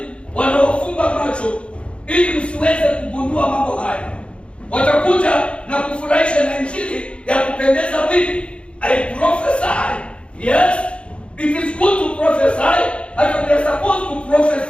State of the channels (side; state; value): right; late; 0.058 ms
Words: wanaofumba macho ili msiweze kugundua mambo haya, watakuja na kufurahisha na injili ya kupendeza vipi? I prophesy. Yes, it is good to prophesy. And we are supposed to